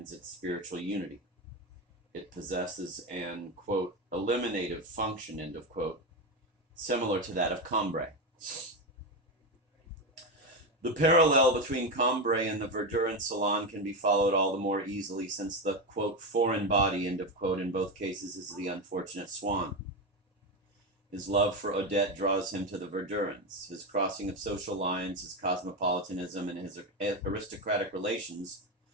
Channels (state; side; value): normal; both; correlation 0.13